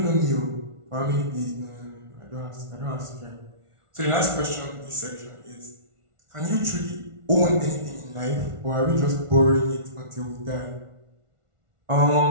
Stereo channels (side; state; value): left; late; 1.4 ms